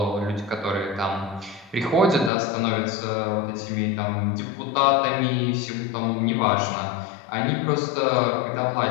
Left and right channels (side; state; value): right; drops out; at 2.3 s